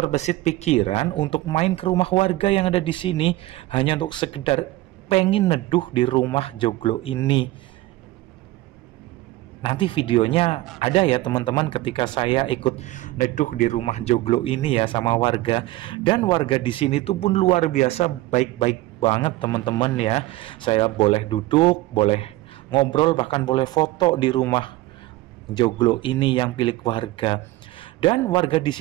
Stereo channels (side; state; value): left; quieter; 17.8 dB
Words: pikiran untuk main ke rumah warga yang ada di sini hanya untuk sekedar pengen neduh di rumah joglo ini. Nanti videonya ada ya teman-teman ketika saya ikut neduh di rumah joglo ini ya sama warga. Dan warga di sini tuh pun luar biasa baik-baik banget teman-teman ya. Saya boleh duduk, boleh ngobrol, bahkan boleh foto di rumah joglo ini yang milik warga. Dan warga di